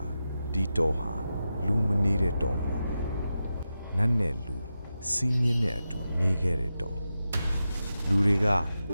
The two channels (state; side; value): inverted; both; correlation -0.90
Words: ဒီတောဟာလူမနေတဲ့တောမဟုတ်ဘူးနတ်နဲ့လူစီမင်းနဲ့အတူနေခဲ့တဲ့တောလူတွေက